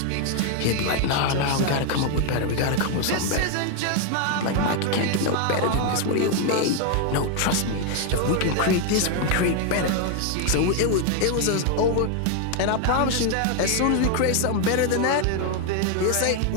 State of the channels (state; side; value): different; both; correlation 0.01